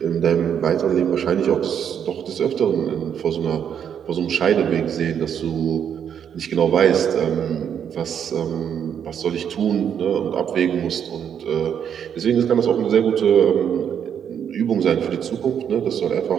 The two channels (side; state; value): left; quieter; 8.4 dB